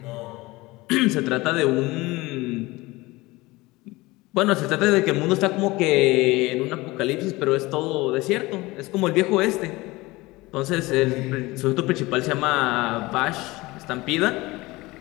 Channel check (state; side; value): quieter; right; 21.1 dB